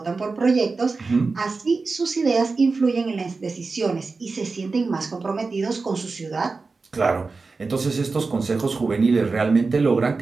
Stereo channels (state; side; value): quieter; left; 4.1 dB